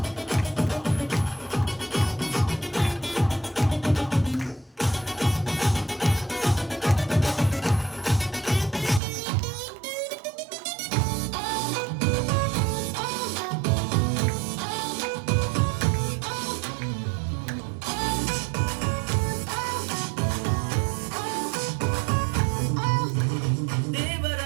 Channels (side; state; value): left; drops out; at 9.0 s